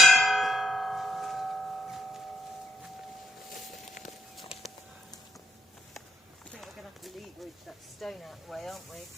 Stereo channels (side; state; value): both; normal; correlation 0.78